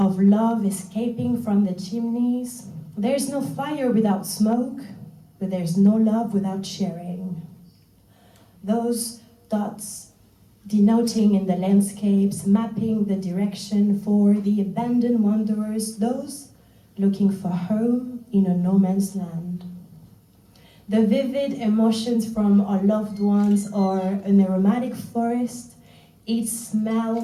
love escaping from the chimneys. There's no fire without smoke, but there's no love without sharing. Those dots denoting in the landscapes, mapping the direction for the abandoned wanderers, those looking for home in a no man's land. The vivid emotions from our loved ones or an aromatic forest, each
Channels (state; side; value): identical; both; correlation 1.00